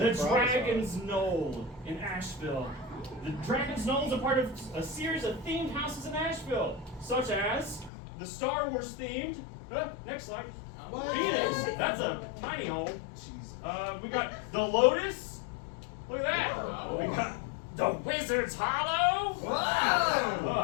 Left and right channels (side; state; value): right; drops out; at 7.9 s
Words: Carrabba's are. Dragon's Knoll in Asheville. The Dragon's Knoll is a part of a series of themed houses in Asheville, such as the Star Wars themed. Next slide. Phoenix. That's a tiny home. We got the Lotus. Look at that. We got the Wizard's Hollow.